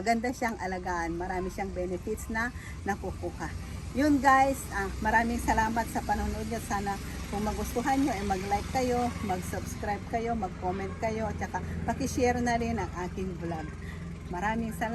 siyang alagaan. Marami siyang benefits na nakukuha. Yun guys, maraming salamat sa panonood niyo. Sana kung magustuhan nyo, mag-like kayo, mag-subscribe kayo, mag-comment kayo, at saka pakishare na rin ang aking vlog. Maraming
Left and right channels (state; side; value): identical; both; correlation 1.00